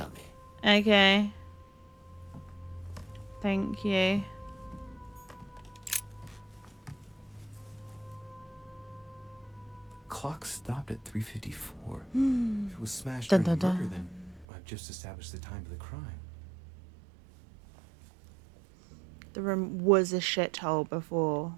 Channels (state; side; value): drops out; left; at 14.5 s